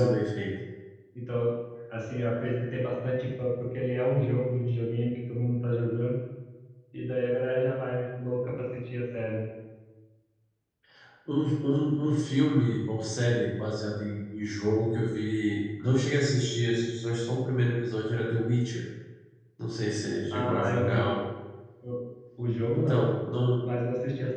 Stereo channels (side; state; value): both; identical; correlation 1.00